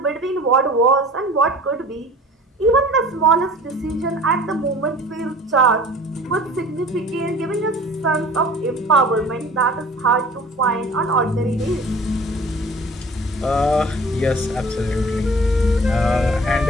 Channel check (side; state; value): both; normal; correlation 0.45